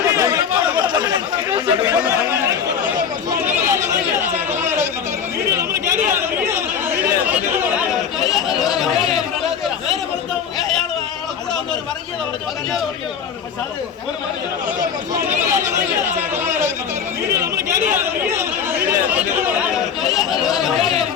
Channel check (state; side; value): quieter; right; 7.4 dB